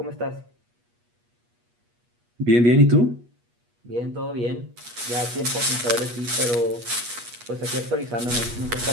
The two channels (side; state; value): left; late; 8.3 ms